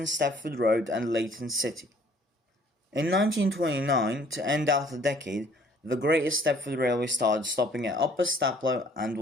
Stepford Road and Leighton City. In 1929, to end out the decade, the Greater Stepford Railway started stopping at Upper Staplow and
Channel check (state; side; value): normal; both; correlation 0.58